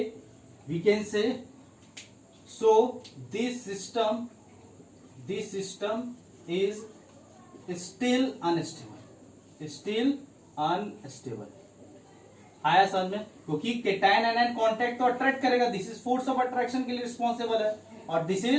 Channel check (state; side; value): identical; both; correlation 1.00